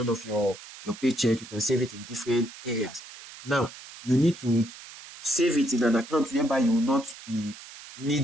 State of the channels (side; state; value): right; noise; hiss, 16 dB below the sound